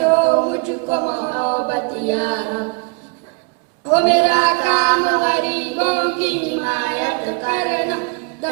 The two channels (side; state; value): left; quieter; 32.6 dB